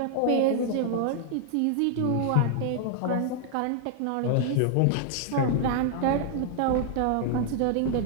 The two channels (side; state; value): both; different; correlation -0.01